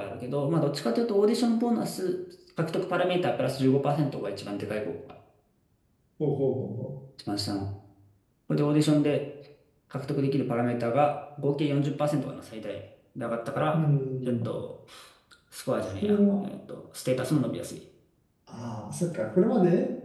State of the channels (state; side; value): identical; both; correlation 1.00